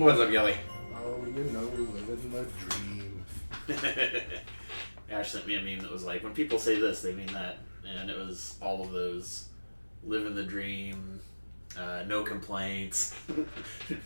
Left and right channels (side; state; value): both; inverted; correlation -1.00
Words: up, Kelley? Oh, living the dream. Ash sent me a meme that was like, when people say this, they mean that. And it was all of those living the dream, no complaints.